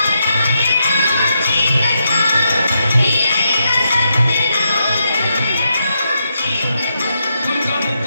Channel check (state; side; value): inverted; both; correlation -0.82